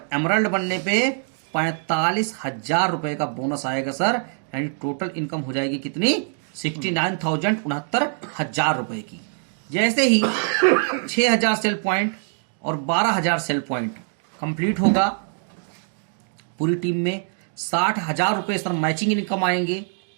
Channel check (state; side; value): silent; left; 63 dB below the other